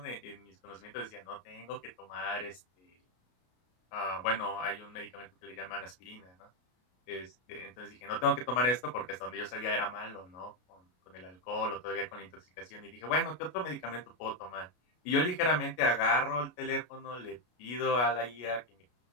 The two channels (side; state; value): right; late; 33 ms